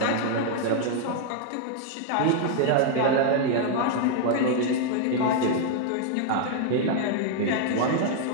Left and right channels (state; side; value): different; both; correlation 0.00